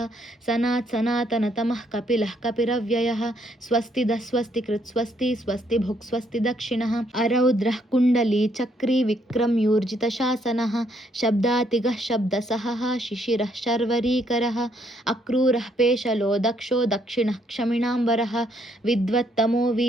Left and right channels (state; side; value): normal; both; correlation 0.71